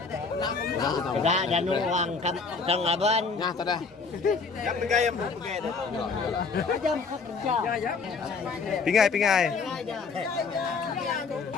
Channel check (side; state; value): right; quieter; 4.7 dB